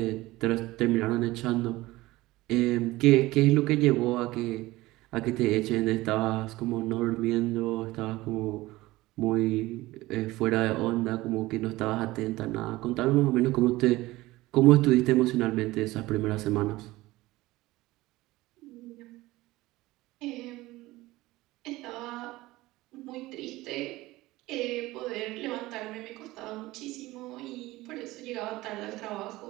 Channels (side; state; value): left; quieter; 18.8 dB